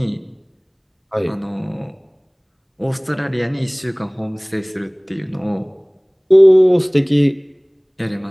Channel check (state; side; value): identical; both; correlation 1.00